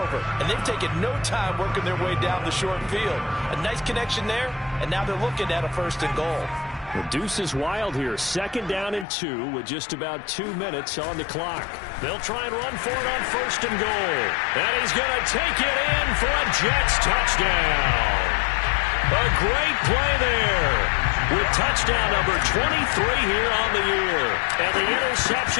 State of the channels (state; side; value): drops out; right; at 9.1 s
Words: and they've taken no time working their way down the short field. A nice connection there, and now they're looking at a 1st and goal. The deuce is wild here. 2nd down and 2 with just about 2 minutes on the clock. They'll try and run for it on 1st and goal. And he's going to take it in for a Jets touchdown. A great play there. With touchdown number 23 here on the year. And the